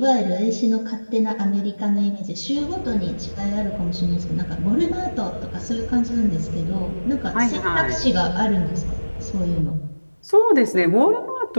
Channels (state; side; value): inverted; both; correlation -1.00